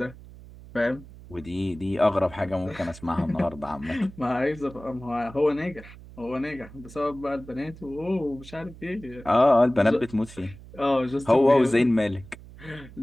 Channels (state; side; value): noise; right; hum, 18 dB below the sound